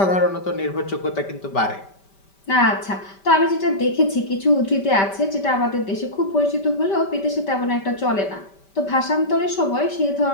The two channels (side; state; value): right; late; 5.1 ms